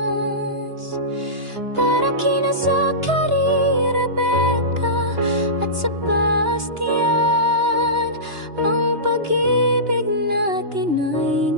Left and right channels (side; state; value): left; late; 2.9 ms